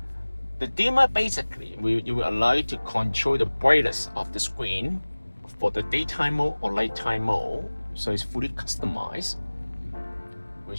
The dimmer basically will allow you to control the brightness of the screen for the daytime mode or nighttime mode. So it's fully customized,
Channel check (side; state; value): both; inverted; correlation -1.00